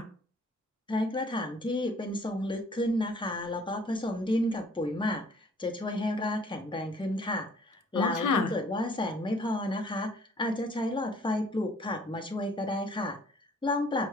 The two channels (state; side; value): normal; both; correlation 0.57